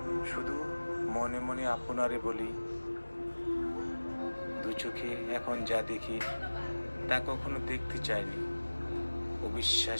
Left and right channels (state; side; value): inverted; both; correlation -1.00